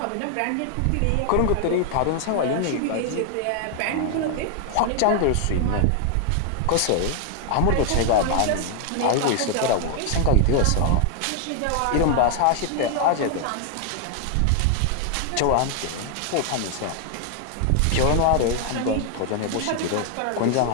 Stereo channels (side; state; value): both; different; correlation 0.00